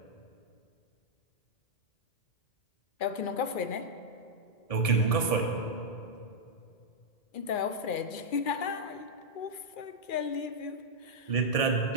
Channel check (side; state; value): right; late; 1.7 ms